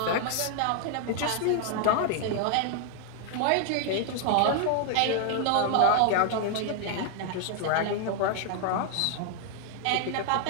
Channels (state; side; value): different; both; correlation 0.00